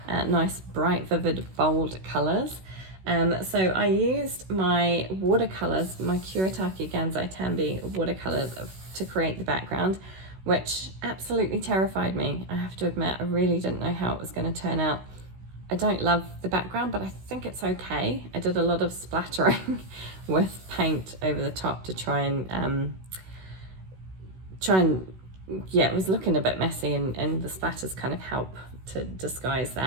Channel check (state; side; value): late; left; 16 ms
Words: Nice, bright, vivid, bold colors. So I used my watercolors, my Kuretake Gansai Tambi watercolors to create the background, which absolutely terrified me. I have to admit, I really didn't know how it was going to turn out. I don't love the background, but I think it's okay. I did a lot of splattering with paint over the top to try and yeah, it was looking a bit messy, and the splatters kind of help to disguise